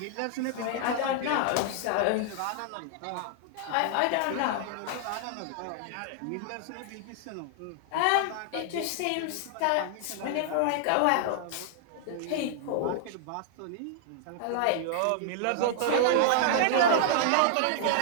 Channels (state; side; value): different; both; correlation -0.01